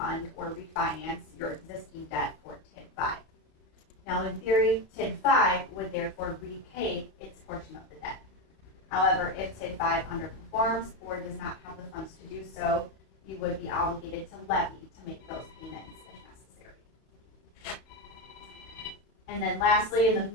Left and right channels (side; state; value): right; late; 31 ms